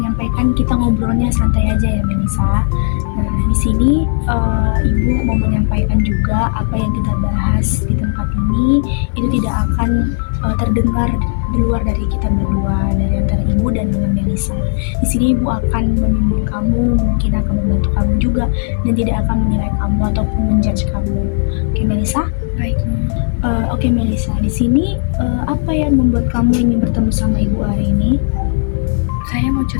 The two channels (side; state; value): right; silent; digital silence